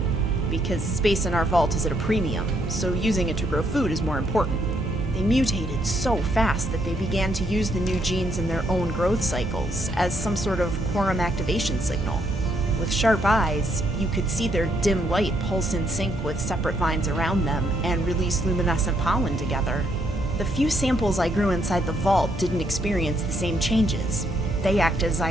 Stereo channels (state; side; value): normal; both; correlation 0.73